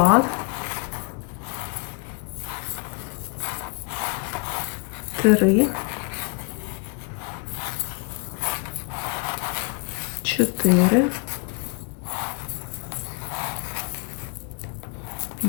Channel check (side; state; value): right; quieter; 34.1 dB